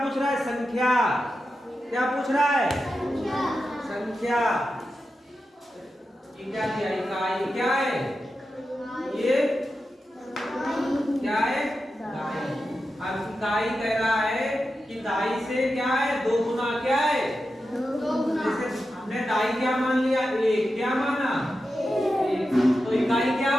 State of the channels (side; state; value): both; normal; correlation 0.90